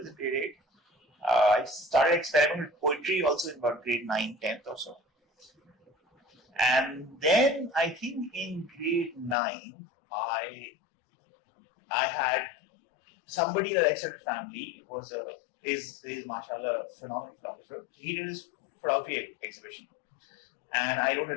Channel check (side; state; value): right; drops out; at 9.3 s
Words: in grade 8. I started experimenting with poetry also in about grade 9, 10th or so. And then I think in grade 9, I had somebody in the extended family is mashallah a phenomenal photographer. He did his photography exhibition, and I wrote a